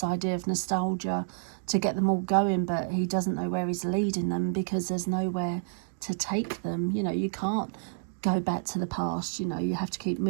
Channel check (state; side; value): silent; left; digital silence